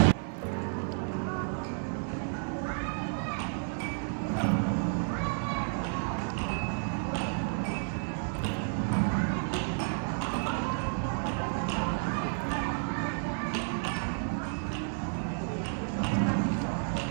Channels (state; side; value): silent; left; 57 dB below the other